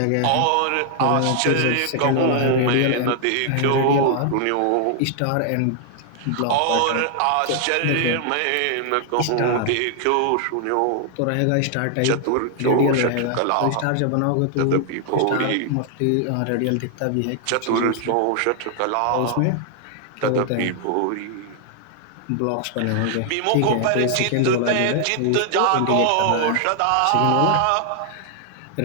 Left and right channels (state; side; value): different; both; correlation 0.00